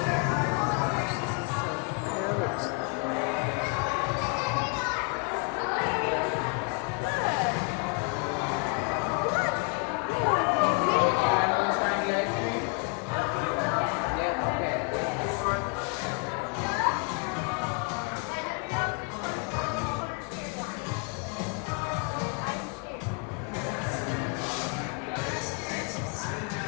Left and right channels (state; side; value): quieter; right; 34.2 dB